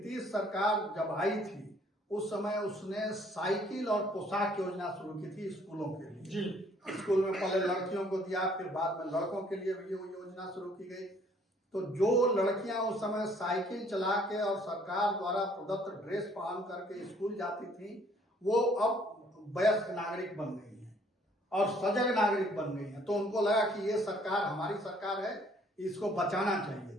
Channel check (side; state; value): both; normal; correlation 0.61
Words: सरकार जब आई थी उस समय उसने साइकिल और पोशाक योजना शुरू की थी स्कूलों के लिए। स्कूल में पहले लड़कियों को दिया, फिर बाद में लड़कों के लिए भी वो योजना शुरू की गई। तो जो लड़कियां उस समय साइकिल चला के और सरकार द्वारा प्रदत्त ड्रेस पहन करके स्कूल जाती थी, वो अब वयस्क नागरिक बन गई हैं और सजग नागरिक बन गई हैं। तो उनको लगा कि ये सरकार हमारी सरकार है, इसको बचाना चाहिए।